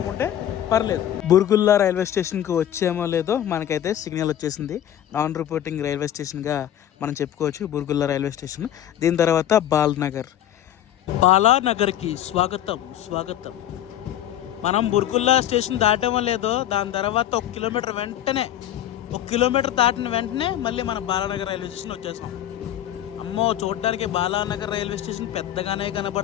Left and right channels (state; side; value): quieter; right; 11.5 dB